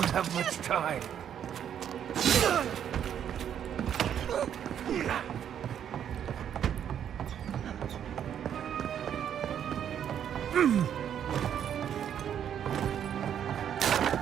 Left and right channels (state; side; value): quieter; left; 9.2 dB